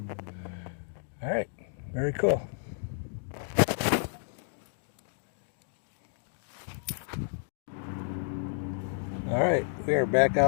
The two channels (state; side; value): silent; right; digital silence